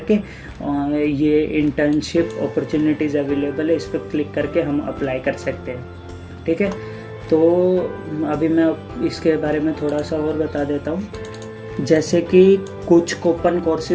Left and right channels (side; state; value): both; identical; correlation 1.00